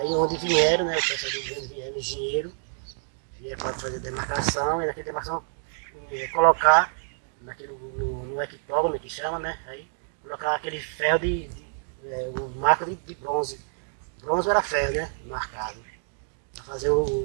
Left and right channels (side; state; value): left; silent; digital silence